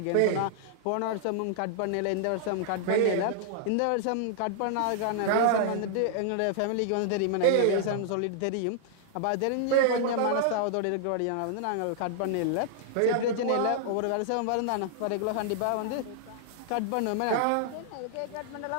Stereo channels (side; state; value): both; different; correlation -0.01